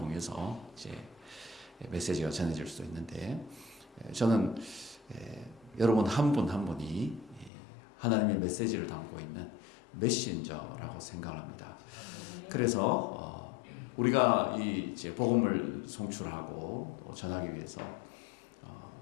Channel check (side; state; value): right; drops out; at 7.5 s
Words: 이제 메시지가 전해질 수도 있는데 저는 여러분 한 분 한 분이 하나님의 메시지를 담고 있는 메신저라고 생각합니다. 그래서 우리가 이 이제 복음을 송출하고 또 전하기 위해서